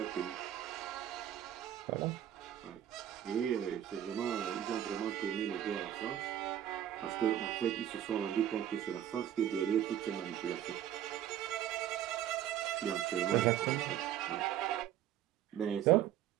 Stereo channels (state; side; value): quieter; left; 11.1 dB